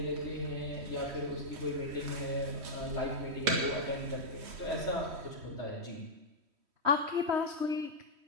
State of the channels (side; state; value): left; late; 3.1 ms